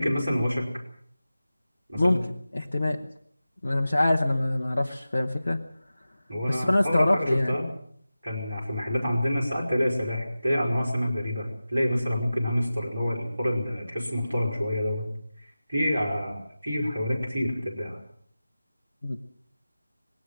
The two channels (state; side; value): inverted; both; correlation -0.95